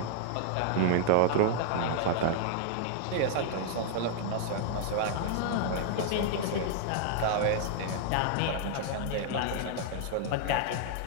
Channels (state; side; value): different; both; correlation 0.00